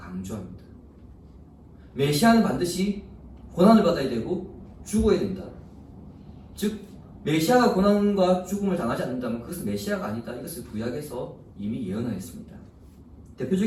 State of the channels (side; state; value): both; identical; correlation 1.00